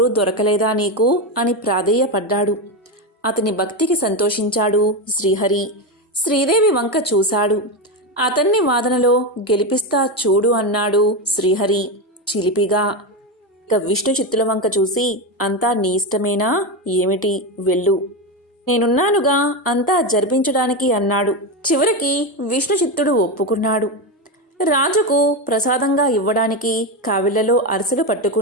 దొరకలేదా నీకు అని ప్రాధేయపడ్డాడు. అతని భక్తికి సంతోషించాడు శ్రీహరి. శ్రీదేవి వంక చూశాడు. అతన్ని వాదనలో గెలిపిస్తా చూడు అన్నాడు శ్రీహరి చిలిపిగా. ఇక విష్ణు చిత్తుల వంక చూసి, అంతా నీ ఇష్టమేనా ఏమిటి, వెళ్ళు, నేనున్నానుగా అంతా జరిపించడానికి అన్నాడు. చివరికి విష్ణు చిత్తుడు ఒప్పుకున్నాడు. రాజుకు ప్రసాదంగా ఇవ్వడానికి కావిళ్లలో అరిసెలు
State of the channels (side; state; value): both; normal; correlation 0.13